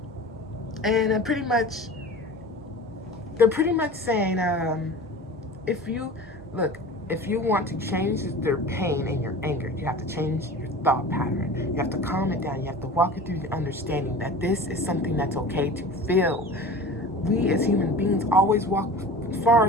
pretty much, they're pretty much saying, if you want to change their pain and your anger, you have to change your thought pattern. You have to calm it down. You have to walk it through the understanding that this is something that's okay to feel. We as human beings always walk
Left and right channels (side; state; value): both; normal; correlation 0.37